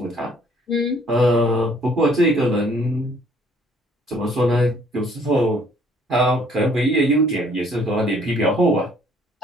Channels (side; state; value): both; normal; correlation 0.60